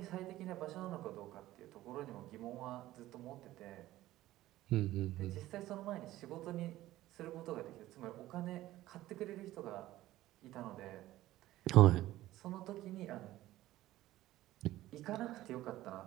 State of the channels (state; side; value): quieter; left; 15.5 dB